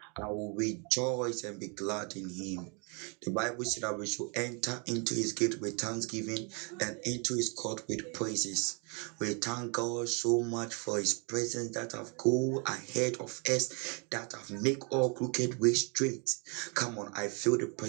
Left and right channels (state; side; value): quieter; left; 34.8 dB